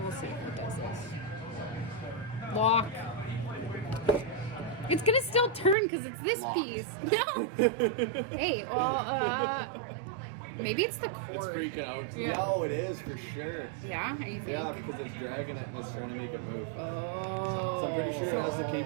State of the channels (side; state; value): left; drops out; at 5.8 s